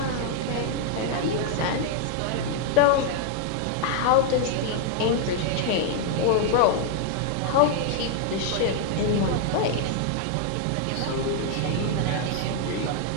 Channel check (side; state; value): both; different; correlation 0.00